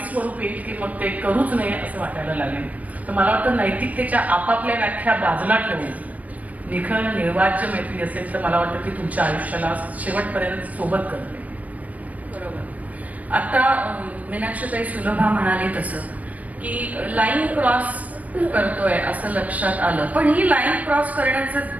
स्वरूप येईल की मग ते करूच नये असं वाटायला लागेल. तर मला वाटतं नैतिकतेच्या आपापल्या व्याख्या बाजूला ठेवून निखळ निर्वाज्य मैत्री असेल तर मला वाटतं की तुमच्या आयुष्याला शेवटपर्यंत सोबत करते. बरोबर. आता मीनाक्षीताई सुलभा म्हणाली तसं की लाईन क्रॉस करतोय असं लक्षात आलं, पण ही लाईन क्रॉस करण्याचं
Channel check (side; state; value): left; late; 0.072 ms